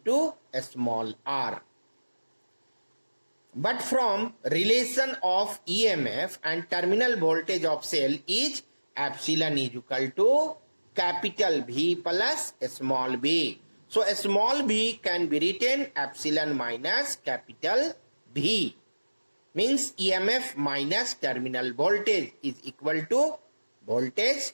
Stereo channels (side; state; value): both; inverted; correlation -1.00